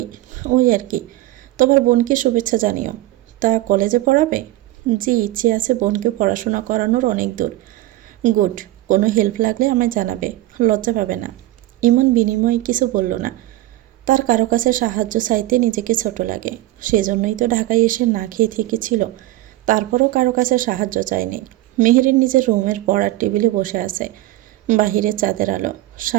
ওই আর কি। তোমার বোনকে শুভেচ্ছা জানিও। তা কলেজে পড়াবে? জি, ইচ্ছে আছে বোনকে পড়াশোনা করানোর অনেক দূর। গুড। কোনো হেল্প লাগলে আমায় জানাবে, লজ্জা পাবে না। ইমন বিনিময়ে কিছু বলল না। তার কারো কাছে সাহায্য চাইতে নিজেকে ছোট লাগে, সেজন্যই তো ঢাকায় এসে না খেয়ে থেকেছিল। তারপরও কারো কাছে সাহায্য চায়নি। মেহেরিন নিজের রুমের পড়ার টেবিলে বসে আছে। বাহিরে চাঁদের আলো,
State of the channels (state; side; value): quieter; left; 16.4 dB